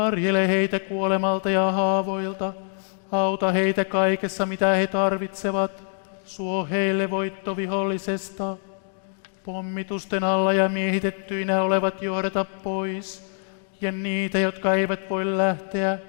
heitä kuolemalta ja haavoilta. Auta heitä kaikessa, mitä he tarvitsevat. Suo heille voitto vihollisesta. Pommitusten alla ja miehitettyinä olevat johdata pois. Ja niitä, jotka eivät voi lähteä,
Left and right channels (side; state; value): right; silent; digital silence